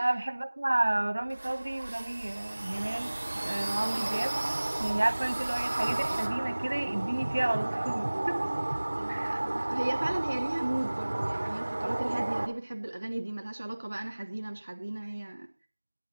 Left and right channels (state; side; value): inverted; both; correlation -1.00